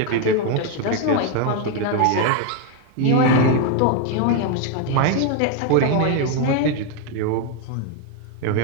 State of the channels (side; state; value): both; different; correlation 0.01